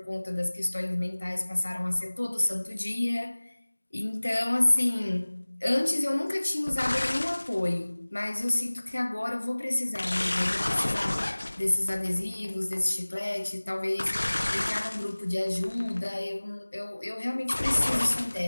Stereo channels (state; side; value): inverted; both; correlation -1.00